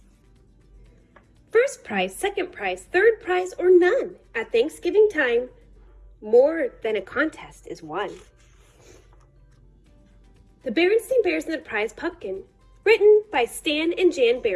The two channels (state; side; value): identical; both; correlation 1.00